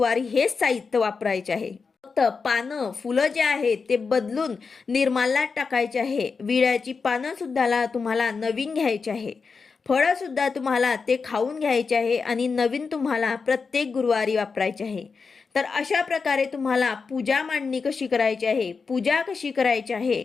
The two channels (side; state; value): right; quieter; 5.0 dB